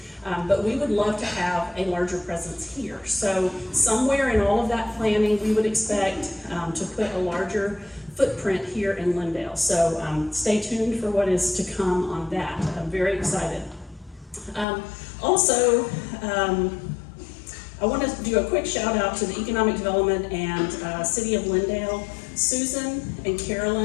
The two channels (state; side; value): drops out; right; at 14.7 s